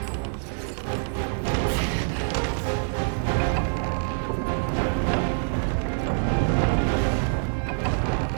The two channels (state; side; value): silent; left; digital silence